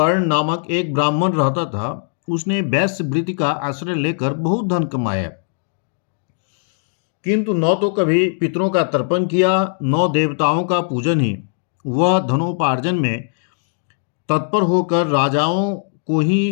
नामक एक ब्राह्मण रहता था। उसने वैश्य वृत्ति का आश्रय लेकर बहुत धन कमाया, किंतु न तो कभी पितरों का तर्पण किया, न देवताओं का पूजन ही। वह धनोपार्जन में तत्पर होकर राजाओं को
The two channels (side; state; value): right; silent; digital silence